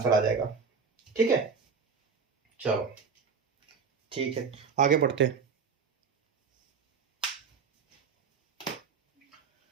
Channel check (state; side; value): quieter; left; 5.6 dB